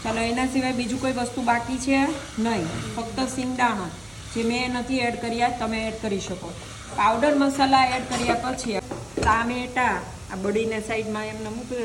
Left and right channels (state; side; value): noise; right; hum, 26 dB below the sound